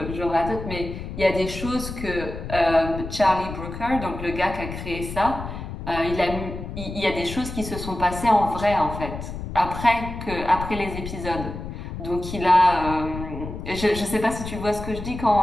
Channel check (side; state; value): left; noise; rumble, 8 dB below the sound